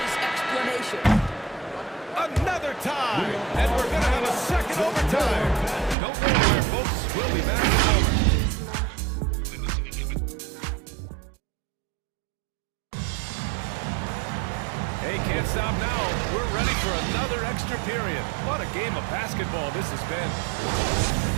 explanation. Another tie. And we're going to have a second overtime. Don't go anywhere, folks. We'll be back in a moment. Hey, can't stop now. We're ready for another extra period. What a game of basketball this has been.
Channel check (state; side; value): drops out; left; at 6.0 s